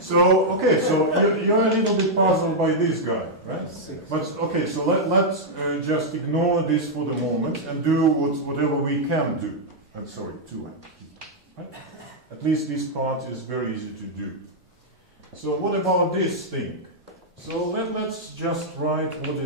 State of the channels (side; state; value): both; normal; correlation -0.04